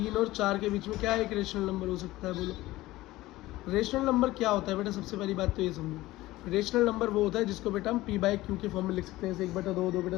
और 4 के बीच में क्या एक रेशनल नंबर हो सकता है, बोलो। रेशनल नंबर क्या होता है बेटा, सबसे पहली बात तो ये समझो, रेशनल नंबर वो होता है जिसको बेटा हम p/q के फॉर्म में लिख सकते हैं, जैसे 1/2,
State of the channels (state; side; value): quieter; right; 17.7 dB